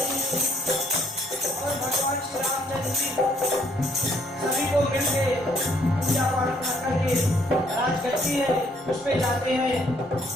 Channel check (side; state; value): both; normal; correlation 0.66